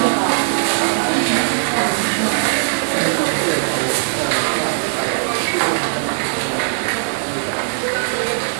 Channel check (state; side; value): silent; left; digital silence